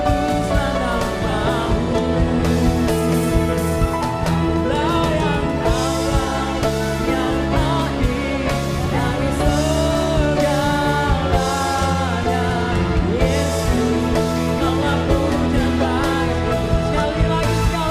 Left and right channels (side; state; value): both; identical; correlation 1.00